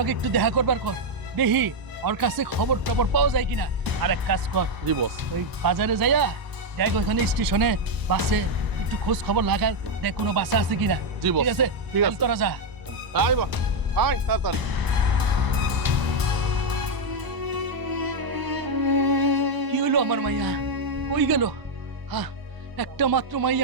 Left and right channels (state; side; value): late; left; 1.0 ms